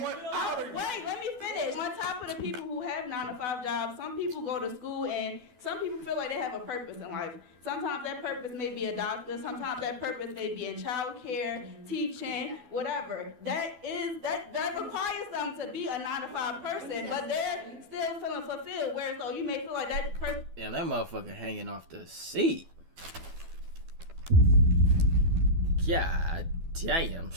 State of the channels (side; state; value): left; late; 12 ms